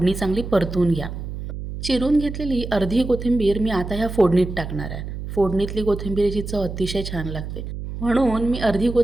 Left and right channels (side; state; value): right; noise; hum, 8 dB below the sound